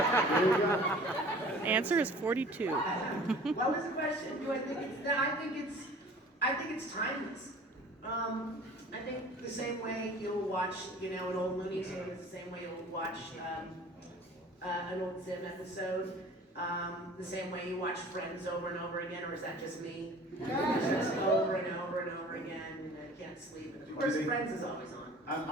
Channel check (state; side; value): normal; both; correlation 0.46